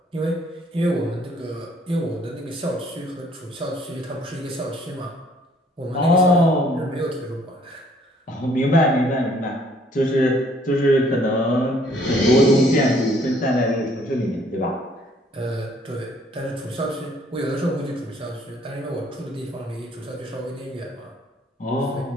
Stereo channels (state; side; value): normal; both; correlation 0.62